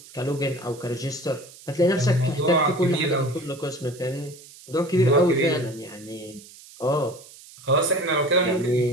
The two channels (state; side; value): noise; right; hiss, 20 dB below the sound